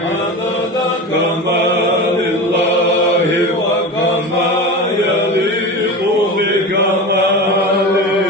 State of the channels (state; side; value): normal; both; correlation 0.28